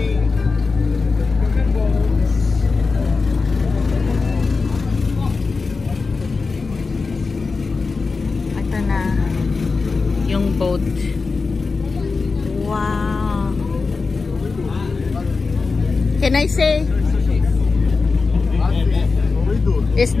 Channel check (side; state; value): right; quieter; 4.3 dB